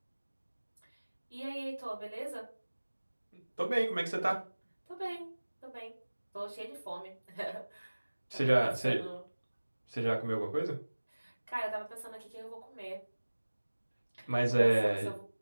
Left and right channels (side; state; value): both; inverted; correlation -1.00